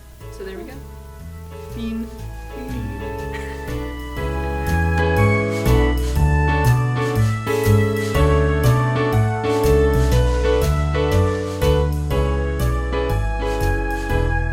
So there we go.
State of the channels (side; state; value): both; identical; correlation 1.00